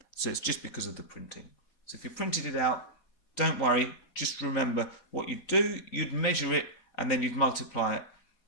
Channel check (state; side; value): late; right; 4.2 ms